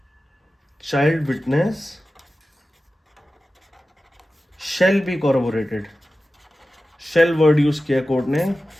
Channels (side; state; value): both; normal; correlation 0.94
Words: child witness shall be corroborated. Shall word use किया कोर्ट ने,